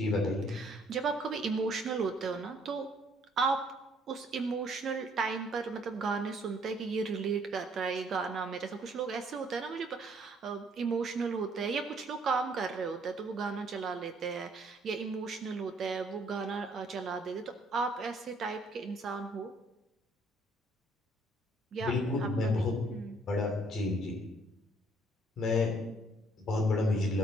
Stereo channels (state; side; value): normal; both; correlation 0.64